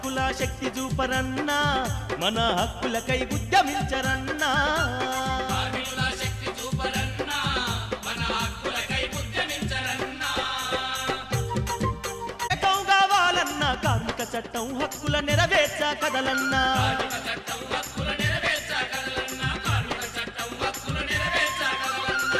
శక్తి చూపరన్నా మన హక్కులకై ఉద్యమించరన్నా కార్మిక చట్టం హక్కుల నెరవేర్చ కదలన్నా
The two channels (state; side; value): identical; both; correlation 1.00